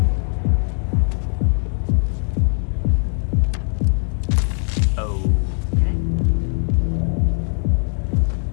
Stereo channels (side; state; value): right; silent; digital silence